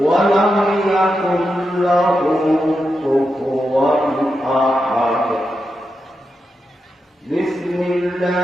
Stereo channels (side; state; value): both; normal; correlation 0.87